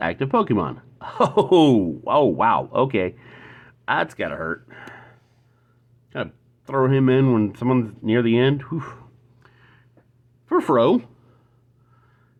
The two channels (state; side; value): identical; both; correlation 1.00